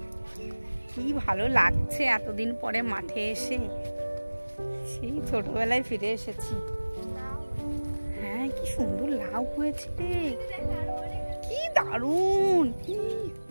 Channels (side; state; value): both; inverted; correlation -1.00